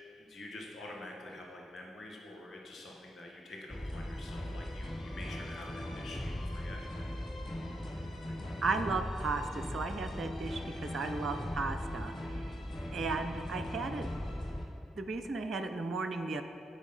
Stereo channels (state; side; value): normal; both; correlation 0.80